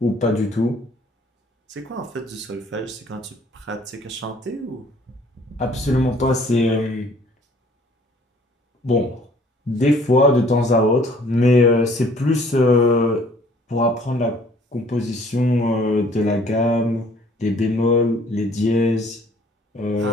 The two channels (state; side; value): normal; both; correlation 0.57